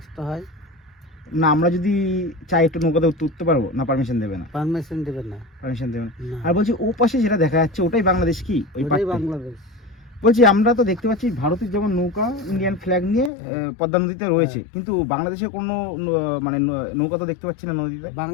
হয়। না, আমরা যদি চাই একটু নৌকাতে উঠতে পারবো না? পারমিশন দেবে না? পারমিশন দেবেন না। পারমিশন দেবে না। না, আর বলছি ও পাশে যেটা দেখা যাচ্ছে ওটাই বাংলাদেশ কি? ওই ওটাই পাশে বাংলাদেশ। বলছি আমরা তো দেখতে পাচ্ছি ভারতের যেমন নৌকা ইন্ডিয়ান ফ্ল্যাগ নিয়ে পদ্মা নদীতে রয়েছে, কিন্তু বাংলাদেশের কোনো মানে নৌকা তো দেখতে পাচ্ছি না নদীতে।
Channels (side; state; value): right; drops out; at 13.3 s